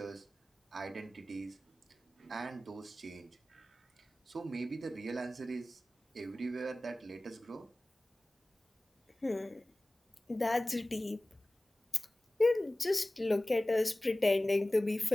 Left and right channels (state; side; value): normal; both; correlation 0.97